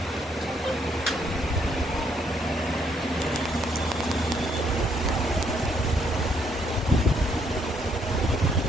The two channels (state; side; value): normal; both; correlation 0.71